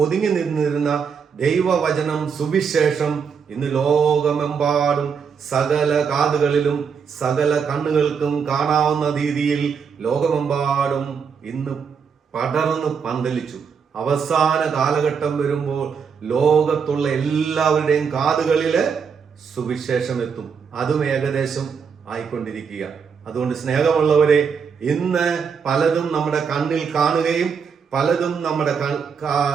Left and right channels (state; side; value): quieter; left; 6.3 dB